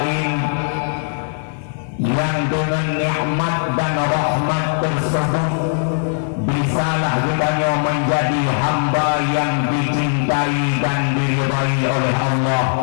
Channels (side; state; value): right; silent; 58 dB below the other